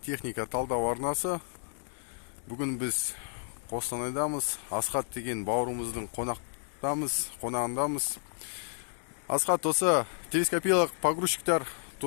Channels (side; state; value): right; silent; digital silence